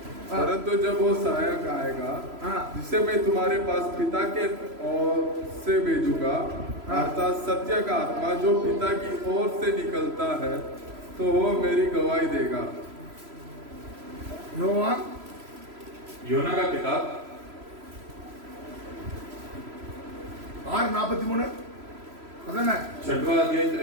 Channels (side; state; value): left; late; 3.0 ms